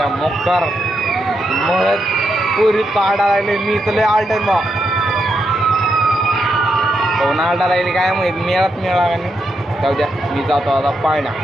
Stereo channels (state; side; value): normal; both; correlation 0.82